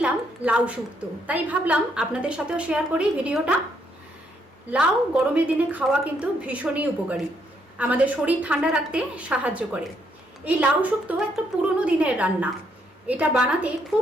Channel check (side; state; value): both; normal; correlation 0.73